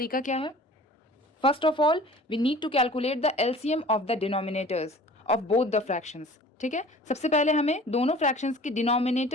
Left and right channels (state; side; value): normal; both; correlation 0.46